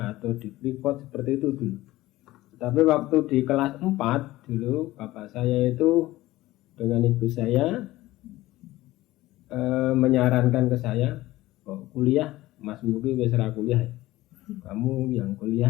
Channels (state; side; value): quieter; right; 17.3 dB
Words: atau di Freeport seperti itu dulu. Tapi waktu di kelas 4 dulu bapak saya itu dengan ibu saya menyarankan ke saya, oh, kuliah, Mas Mugi wis ra kuliah. Kamu yang